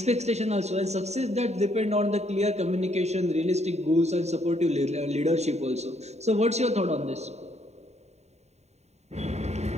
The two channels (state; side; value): late; left; 0.32 ms